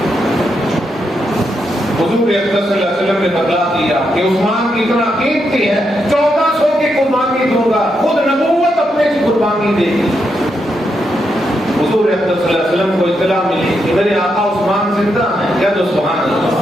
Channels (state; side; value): normal; both; correlation 0.82